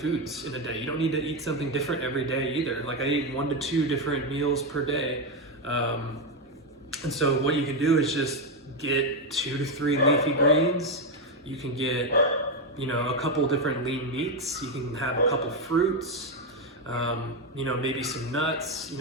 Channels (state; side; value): normal; both; correlation 0.07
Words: in a day. You don't need to eat something different every day either. Like, I eat 1 to 2 different meals per day. And so what you can do is just get 2 to 3 leafy greens. You can get, a couple different lean meats. You can have a couple fruits, maybe some nuts.